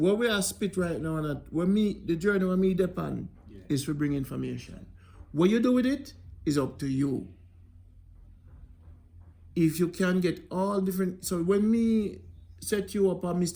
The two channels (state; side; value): identical; both; correlation 1.00